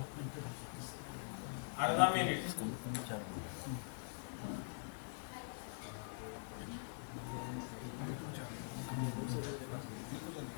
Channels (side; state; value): right; silent; digital silence